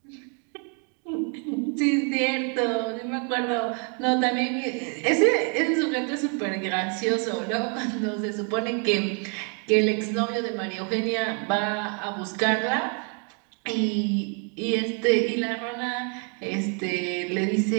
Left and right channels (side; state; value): left; quieter; 39.5 dB